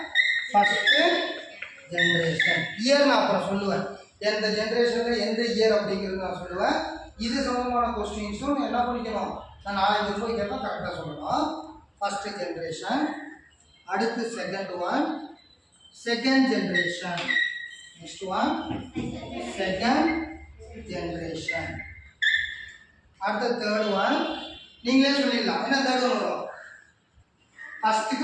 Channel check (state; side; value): identical; both; correlation 1.00